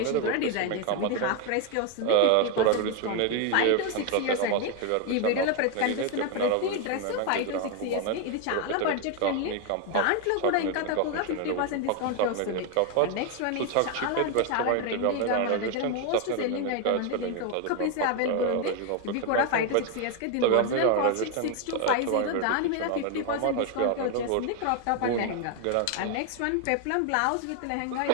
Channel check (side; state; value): both; different; correlation 0.01